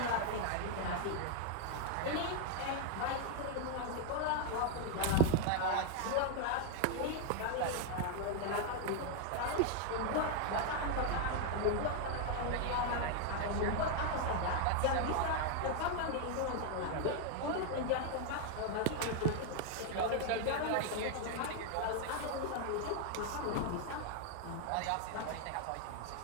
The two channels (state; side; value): different; both; correlation 0.00